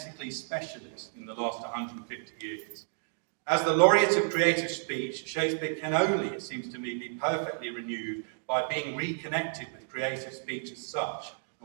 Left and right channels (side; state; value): left; silent; digital silence